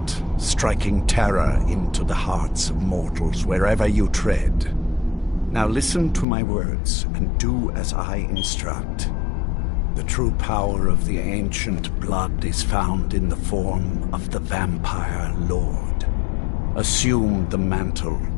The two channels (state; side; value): drops out; right; at 6.2 s